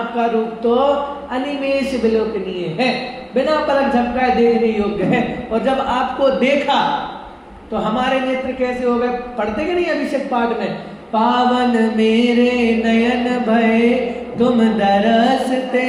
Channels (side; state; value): both; identical; correlation 1.00